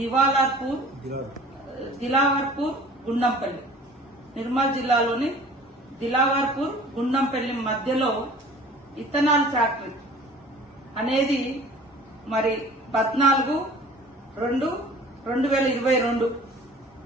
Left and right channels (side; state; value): both; normal; correlation 0.47